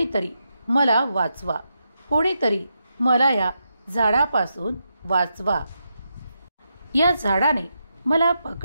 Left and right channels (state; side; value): inverted; both; correlation -0.84